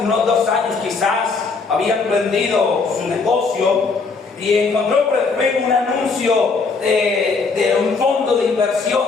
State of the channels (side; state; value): right; quieter; 4.5 dB